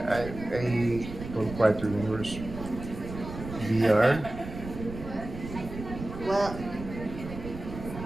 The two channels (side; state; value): right; noise; rumble, 10 dB below the sound